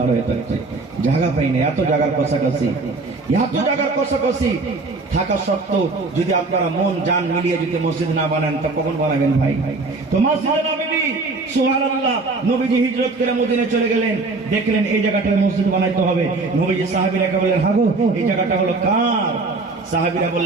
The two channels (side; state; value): left; quieter; 3.7 dB